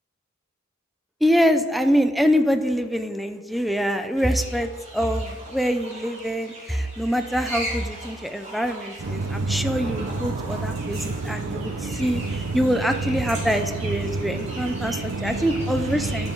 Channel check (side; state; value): both; normal; correlation 0.82